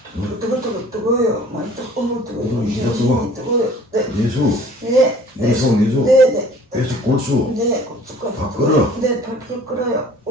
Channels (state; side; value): normal; both; correlation 0.50